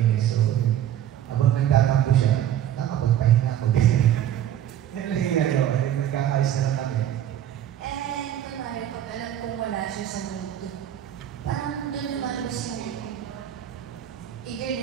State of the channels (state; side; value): quieter; left; 11.0 dB